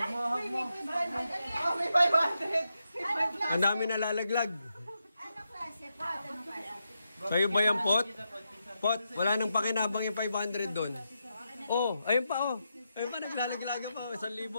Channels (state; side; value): inverted; both; correlation -0.86